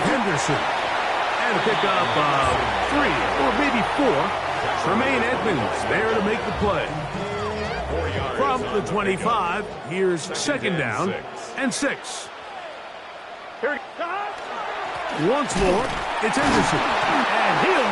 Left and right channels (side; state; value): both; identical; correlation 1.00